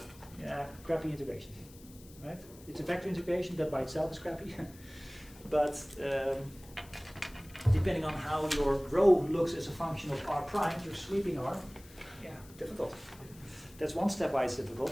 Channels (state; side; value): noise; left; hiss, 22 dB below the sound